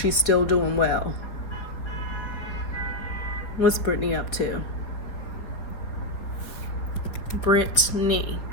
still doing well. What's Britney up to? Britney.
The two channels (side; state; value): right; late; 4.4 ms